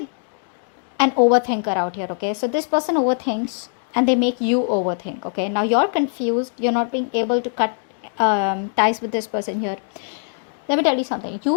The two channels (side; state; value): right; silent; digital silence